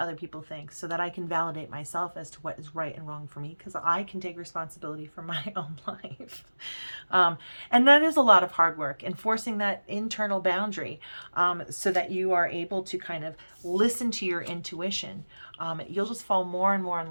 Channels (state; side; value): inverted; both; correlation -1.00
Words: people think, so that I can validate myself as to what is right and wrong for me, because I can take responsibility for my own life. And that is a lot of hard work, enforcing that internal boundary, so that you are able to kind of listen to your intuition. You'll just fall more and more